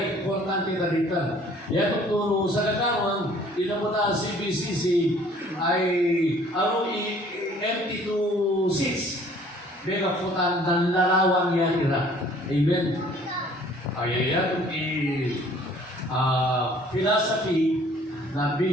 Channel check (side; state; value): both; normal; correlation 0.55